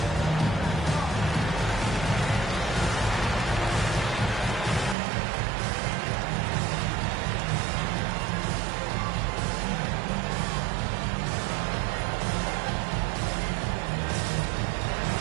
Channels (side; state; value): left; drops out; at 5.0 s